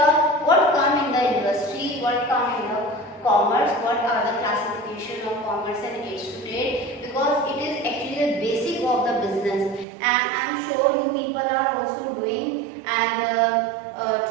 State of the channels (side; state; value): left; drops out; at 9.9 s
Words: what come in the industry, what come in the commerce, what are the classification of commerce and aids to trade, because it is actually the basic of the business. And I am sure you people are also doing and